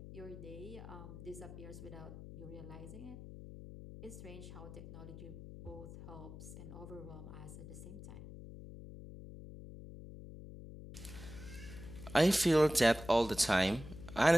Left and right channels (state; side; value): noise; left; hum, 13 dB below the sound